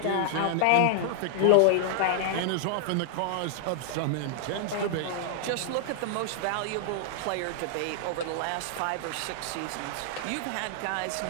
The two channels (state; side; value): different; both; correlation 0.00